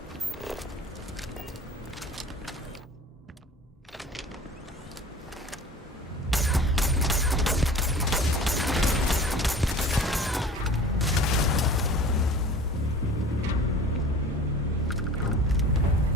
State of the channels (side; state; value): both; normal; correlation 0.42